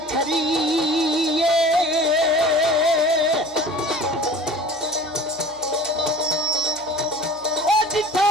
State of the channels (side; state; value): right; noise; hum, 26 dB below the sound